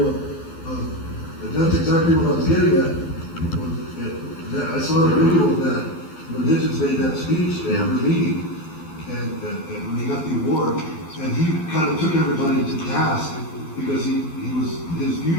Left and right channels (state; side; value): late; right; 12 ms